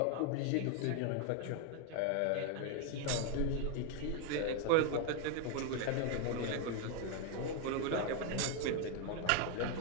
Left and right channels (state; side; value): different; both; correlation 0.01